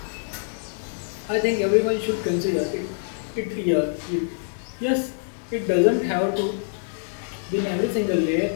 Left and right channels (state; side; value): silent; right; 59 dB below the other